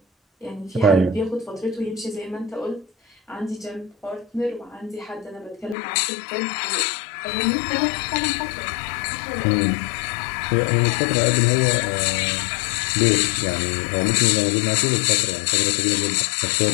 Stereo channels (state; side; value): drops out; right; at 5.8 s